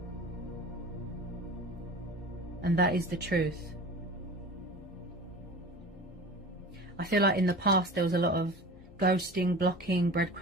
And that is the truth. I feel like in the past there was a lot of ghosting, blocking,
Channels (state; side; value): normal; both; correlation 0.37